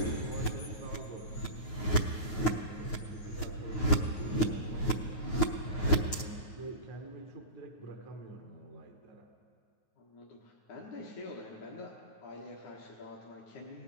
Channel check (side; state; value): right; late; 9.3 ms